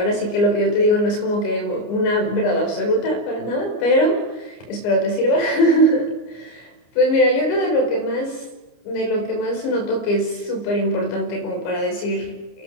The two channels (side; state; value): right; late; 29 ms